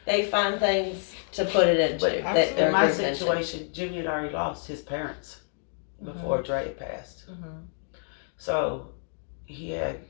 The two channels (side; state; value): right; silent; 59 dB below the other